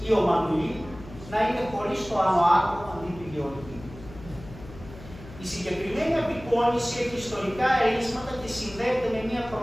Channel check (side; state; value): left; noise; hum, 17 dB below the sound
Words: ή ο Μανουλή να είναι χωρίς το άνω άκρο αντί του Γεωργίου. Η συγκεκριμένη απεικόνιση έχει ιστορικά ερίσματα και συνδέεται με μια